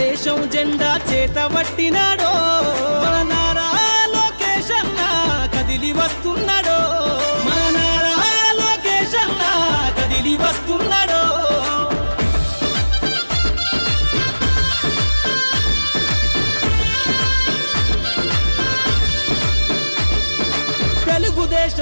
జెండా చేతబట్టినాడో మన నారా లోకేష్ అన్న కదిలి వస్తున్నాడో మన నారా లోకేష్ అన్న కదిలి వస్తున్నాడో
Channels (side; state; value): both; inverted; correlation -1.00